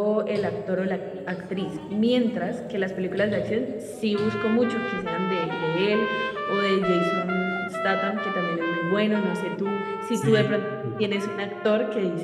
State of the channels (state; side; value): identical; both; correlation 1.00